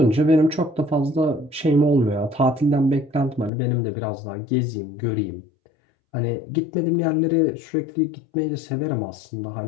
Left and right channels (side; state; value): right; drops out; at 3.5 s